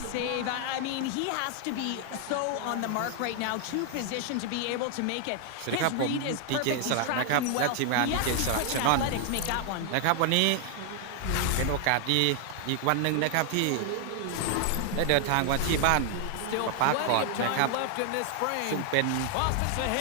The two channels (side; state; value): both; different; correlation 0.00